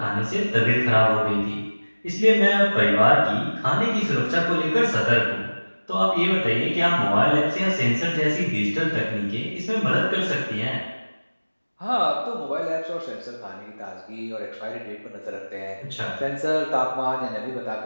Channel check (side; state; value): both; inverted; correlation -1.00